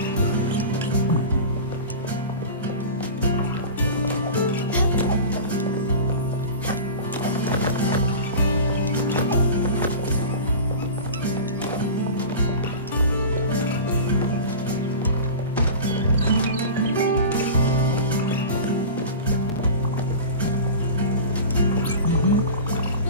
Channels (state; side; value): inverted; both; correlation -0.32